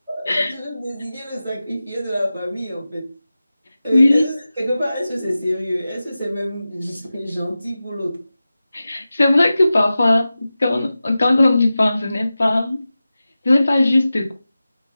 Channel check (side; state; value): both; inverted; correlation -0.95